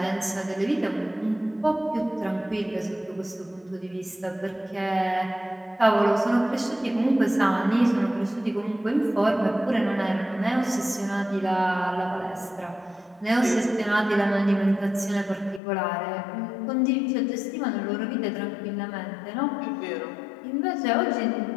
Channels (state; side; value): drops out; right; at 15.6 s